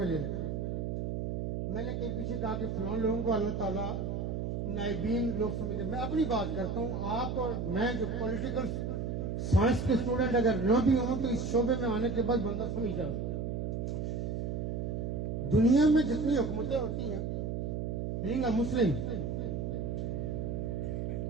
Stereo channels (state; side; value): noise; right; hum, 2 dB below the sound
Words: ले लेते। मैंने कहीं पीछे कहा कि फलां लोगों को अल्लाह ताला नाइबीन लोग समझते। मैं अपनी बात करता हूँ, आप और मैं जो पॉलिटिकल साइंस के स्टूडेंट अगर न भी हों तो इस शोबे में आने के बाद बंदा समझ जाता। दुनिया में जितनी हुकूमतें होती हैं, बीइंग अ मुस्लिम,